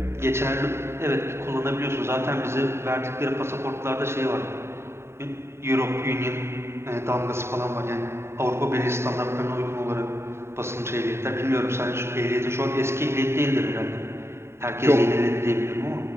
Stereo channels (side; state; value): left; late; 0.12 ms